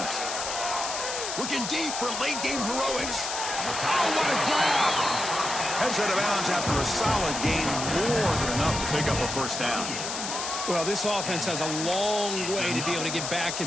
Looking deep for late game heroics. Oh, what a grab! Heads out of bounds after a solid gain, more than enough to pick up a 1st down. Well, this offense has a long way to be able to get back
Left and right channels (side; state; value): left; noise; hiss, 4 dB below the sound